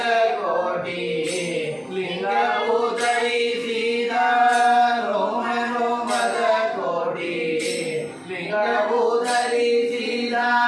ಕೋಟಿ ಲಿಂಗವು ಧರಿಸಿದ ರೋಮ ರೋಮದ ಕೋಟಿ ಲಿಂಗವು ಧರಿಸಿದ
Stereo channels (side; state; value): both; identical; correlation 1.00